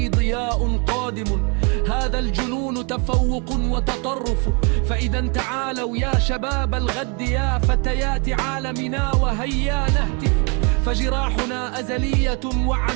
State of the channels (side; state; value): left; quieter; 33.4 dB